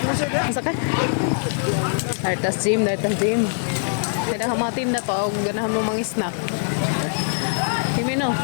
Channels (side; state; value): right; silent; 64 dB below the other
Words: Masa ka? Dartas gym, dartas gym. Kada ka mga tinda to, ganahan mo mga snack. Himino.